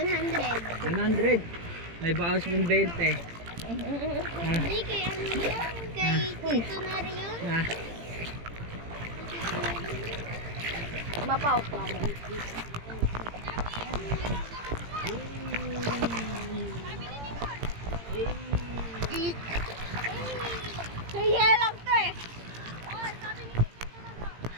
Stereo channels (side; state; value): left; late; 18 ms